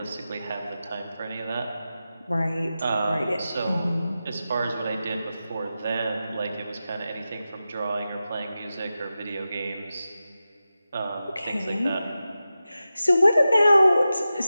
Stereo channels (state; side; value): inverted; both; correlation -0.93